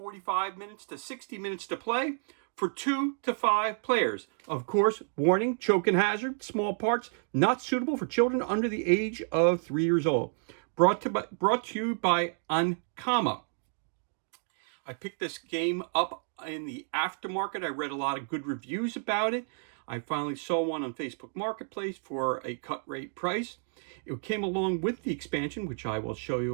minutes to 60 minutes to play for 2 to 5 players. Of course, warning, choke and hazard, small parts, not suitable for children under the age of 3 years old. Brought to you by Ankama. I picked this game up in the aftermarket. I read a lot of good reviews about it. I finally saw one on Facebook Marketplace for a cut rate price. It came along with the expansion, which I will show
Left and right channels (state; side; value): silent; left; digital silence